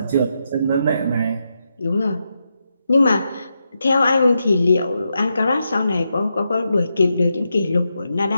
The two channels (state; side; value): inverted; both; correlation -0.85